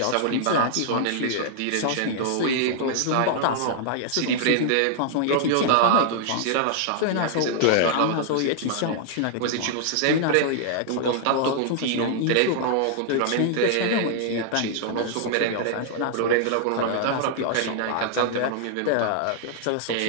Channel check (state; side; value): different; both; correlation -0.01